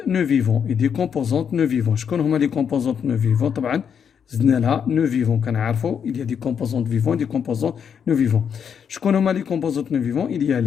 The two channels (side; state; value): right; quieter; 7.5 dB